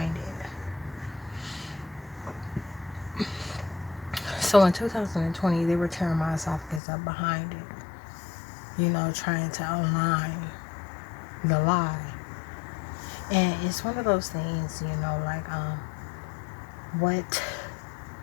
it. So in 2020, they were tearing my esophagus up behind it, trying to align the lie. And it's one of those things, like what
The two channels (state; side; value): drops out; right; at 6.8 s